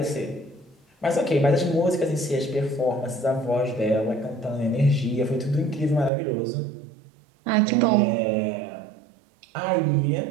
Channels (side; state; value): left; drops out; at 6.1 s